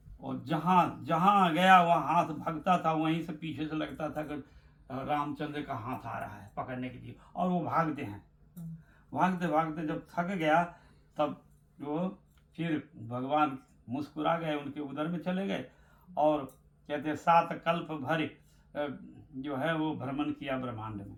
और जहाँ जहाँ गया वहाँ हाथ भागता था, वहीं से पीछे से लगता था कि रामचंद्र का हाथ आ रहा है पकड़ने के लिए, और वो भागते हैं। भागते भागते जब थक गया तब वो फिर भगवान मुस्कुरा गए, उनके उदर में चले गए और कहते हैं 7 कल्प भर जो है वो भ्रमण किया ब्रह्मांड में,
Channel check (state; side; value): identical; both; correlation 1.00